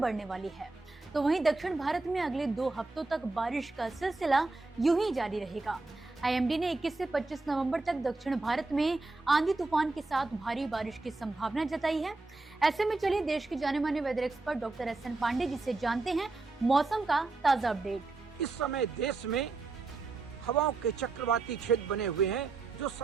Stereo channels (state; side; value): quieter; left; 3.5 dB